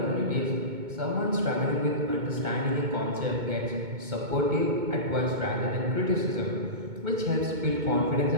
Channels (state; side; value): late; left; 2.2 ms